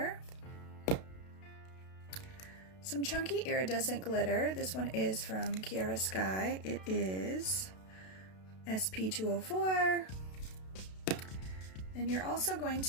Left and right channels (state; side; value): late; right; 32 ms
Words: some chunky iridescent glitter. This one is from KIARA Sky. It is SP204. Then you're also going